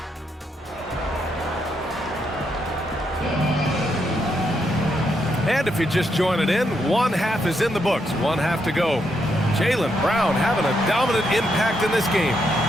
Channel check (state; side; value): normal; both; correlation 0.79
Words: And if you just join it in, one half is in the books, one half to go. Jaylen Brown having a dominant impact in this game.